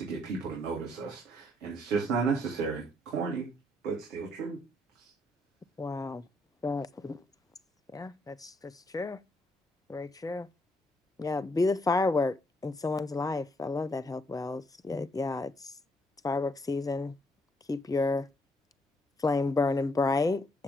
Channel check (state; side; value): normal; both; correlation 0.72